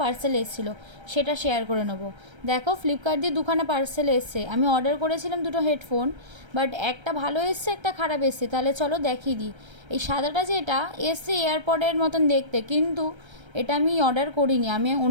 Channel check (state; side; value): late; left; 1.3 ms